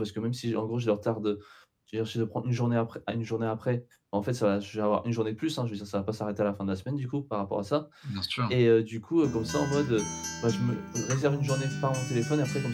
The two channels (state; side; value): identical; both; correlation 1.00